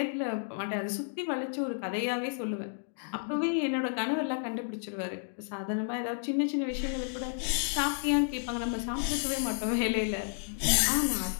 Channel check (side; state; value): right; silent; digital silence